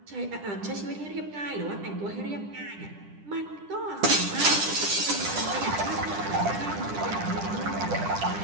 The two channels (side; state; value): left; late; 10 ms